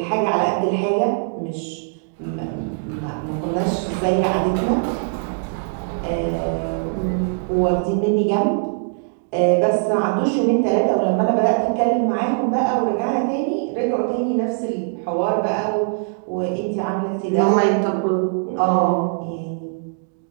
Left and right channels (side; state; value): left; silent; digital silence